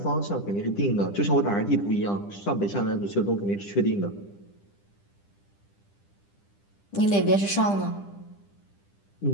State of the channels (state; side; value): late; right; 10 ms